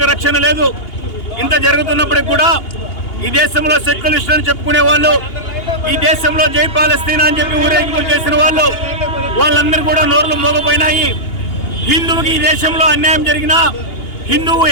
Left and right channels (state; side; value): late; right; 2.8 ms